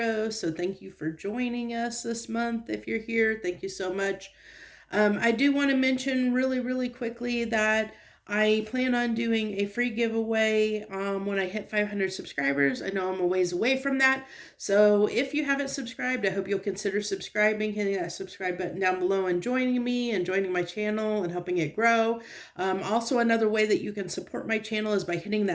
So, thank you for joining us this month. If you're here, thank you so much. I do want to mention really quickly that I plan on doing a free giveaway when I hit 500 subscribers. I know I'm a ways away from that. So if you haven't subscribed, I hope you'll consider subscribing, hitting that subscribe button down below and joining me and joining my channel and helping it grow. Also, another way that you can support my channel is by hitting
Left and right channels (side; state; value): both; identical; correlation 1.00